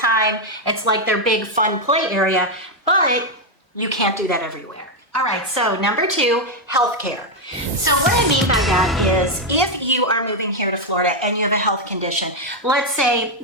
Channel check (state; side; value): normal; both; correlation 0.03